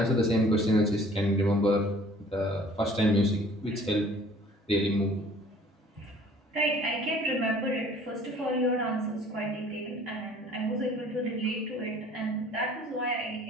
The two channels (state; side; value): normal; both; correlation 0.52